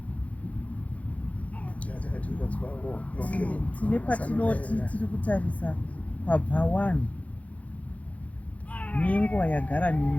tine patinoti tiri kutarisa kwabva 1 nenguva yagara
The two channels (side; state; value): right; late; 0.067 ms